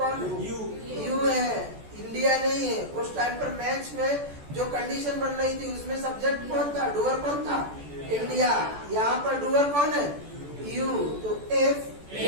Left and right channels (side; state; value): left; late; 14 ms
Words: है? यू है, इंडिया नहीं है। उस टाइम पर मैच में जो कंडीशन बन रही थी उसमें सब्जेक्ट कौन था? डूअर कौन था? इंडिया। यहाँ पर डूअर कौन है? यू। तो if